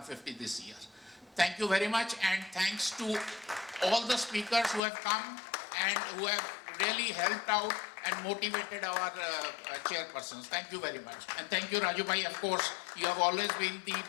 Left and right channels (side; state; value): right; drops out; at 4.8 s